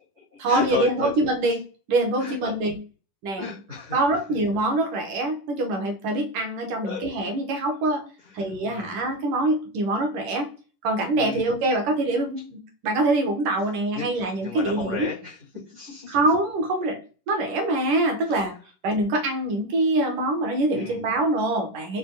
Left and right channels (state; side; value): late; left; 10 ms